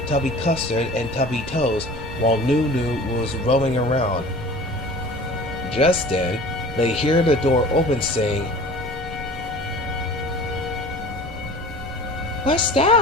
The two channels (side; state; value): both; normal; correlation 0.42